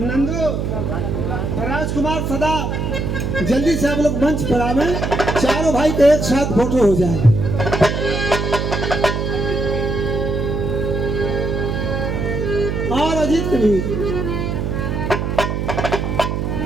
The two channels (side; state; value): right; noise; hum, 1 dB below the sound